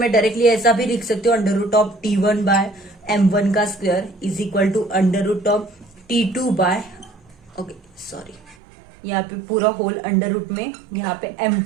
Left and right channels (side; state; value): left; drops out; at 8.6 s